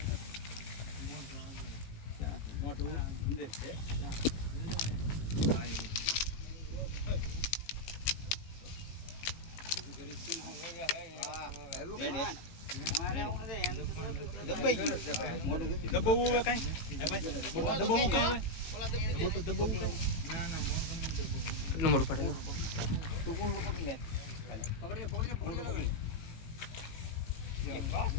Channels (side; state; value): right; late; 18 ms